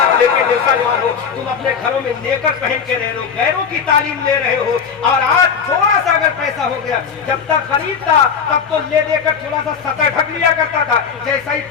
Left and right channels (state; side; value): quieter; right; 6.6 dB